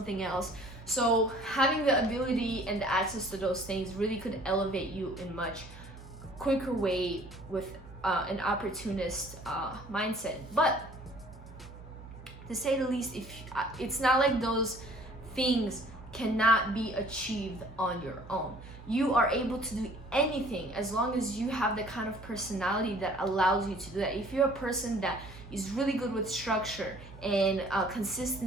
else. So having the ability and the access to those things really could elevate you in much quicker way with an opportunist mindset. But to say the least, if it's not like those things cannot be achieved on your own. You are able to do anything as long as you have the kind of personality that allows you to do that. If you're a person that is really good with structure and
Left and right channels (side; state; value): both; normal; correlation 0.54